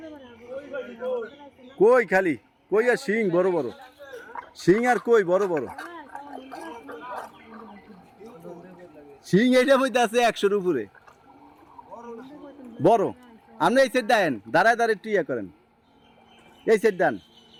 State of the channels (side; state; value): both; identical; correlation 1.00